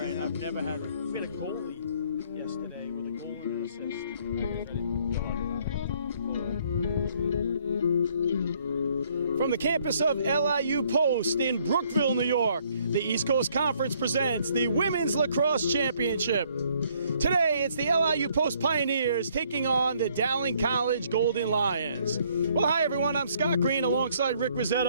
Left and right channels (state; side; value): inverted; both; correlation -0.65